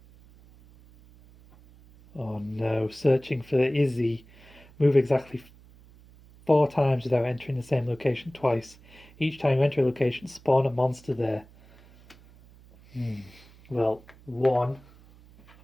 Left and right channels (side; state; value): right; noise; hum, 25 dB below the sound